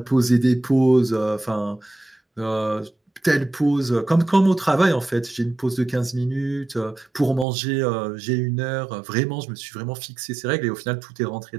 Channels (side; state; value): left; drops out; at 7.5 s